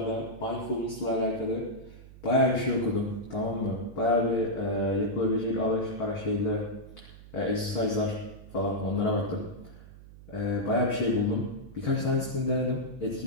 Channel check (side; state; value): right; noise; hum, 18 dB below the sound